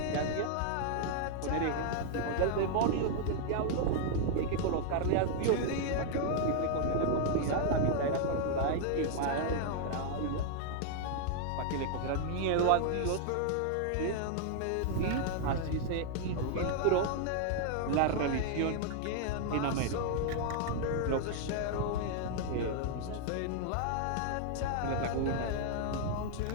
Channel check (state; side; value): different; both; correlation 0.00